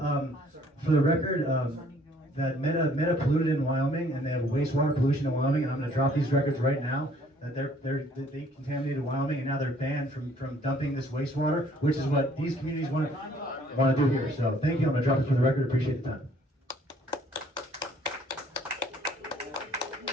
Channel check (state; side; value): normal; both; correlation 0.60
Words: the record, that Meta polluted in Wyoming, and they have wastewater pollution in Wyoming. And I'm going to drop these records right now. That they contaminated Wyoming, and now they're banned from dumping this wastewater, which is what these communities want to do here. So thank you. I'm going to drop it for the record. Appreciate the time.